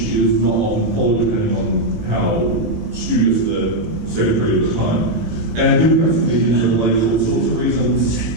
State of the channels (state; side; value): late; left; 18 ms